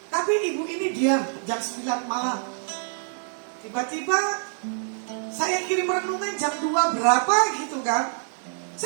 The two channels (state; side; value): silent; left; 61 dB below the other